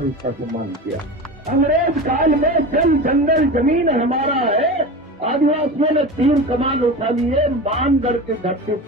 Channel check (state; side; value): normal; both; correlation 0.29